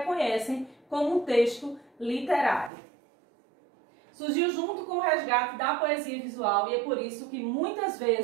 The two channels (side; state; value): left; drops out; at 2.7 s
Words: como um texto literário. Surgiu junto com o resgate da poesia visual e é por isso que muitas